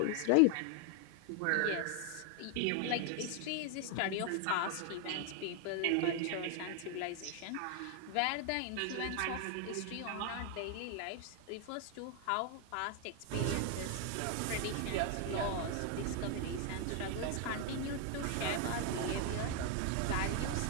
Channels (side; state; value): both; different; correlation 0.01